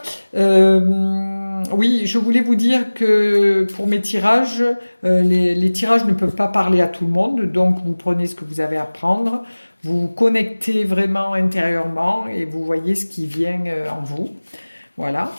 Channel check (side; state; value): both; inverted; correlation -1.00